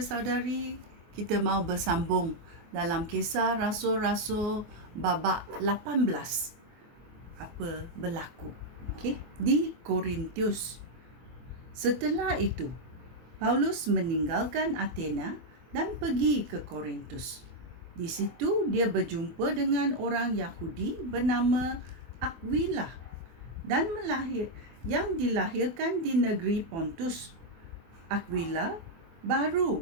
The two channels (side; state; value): left; late; 24 ms